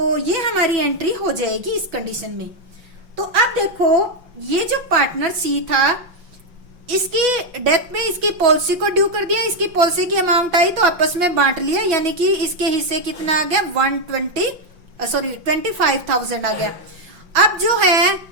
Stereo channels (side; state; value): left; late; 5.7 ms